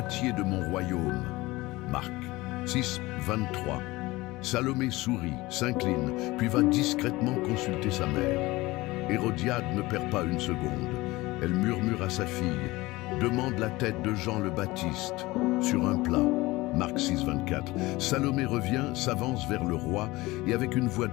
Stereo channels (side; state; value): right; quieter; 20.4 dB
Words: de mon royaume. » Marc 6, 23. Salomé sourit, s'incline, puis va discrètement consulter sa mère. Hérodiade ne perd pas une seconde. Elle murmure à sa fille: « Demande la tête de Jean le Baptiste sur un plat. » Marc 6, 24. Salomé revient, s'avance vers le roi, et avec une voix